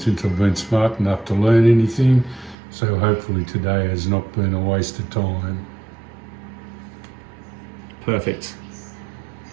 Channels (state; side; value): drops out; left; at 2.6 s